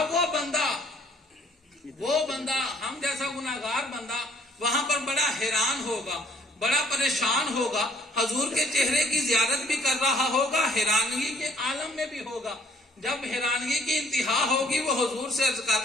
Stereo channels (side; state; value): both; normal; correlation 0.61